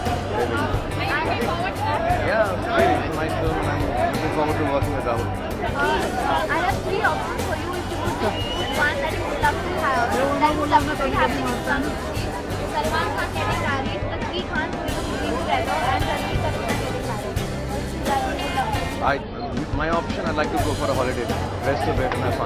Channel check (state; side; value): identical; both; correlation 1.00